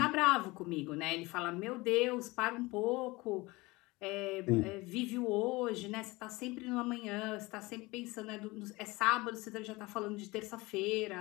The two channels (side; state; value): right; quieter; 22.4 dB